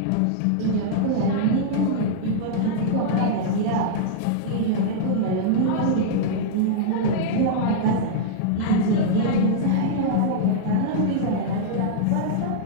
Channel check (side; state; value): both; different; correlation -0.02